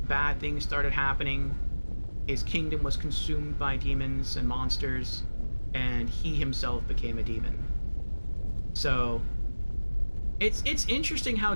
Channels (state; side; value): inverted; both; correlation -1.00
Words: Bad things started happening. His kingdom was consumed by demons and monsters, and he himself became a demon. So... It's interesting how